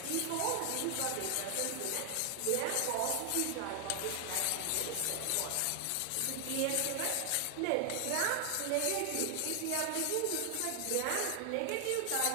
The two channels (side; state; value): both; different; correlation 0.00